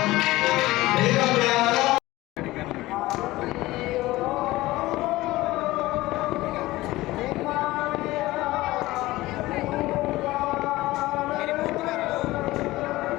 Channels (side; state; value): right; quieter; 18.3 dB